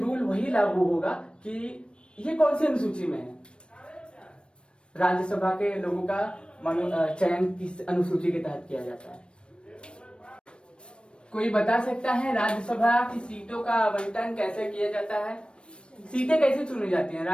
वही लागू होगा कि ये कौन सी अनुसूची में है। राज्यसभा के लोगों का चयन किस अनुसूची के तहत किया जाता है। कोई बता सकता है राज्यसभा की सीटों का आवंटन कैसे किया जाता है? सीटें कैसे चुनी जाती हैं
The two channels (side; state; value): right; late; 0.056 ms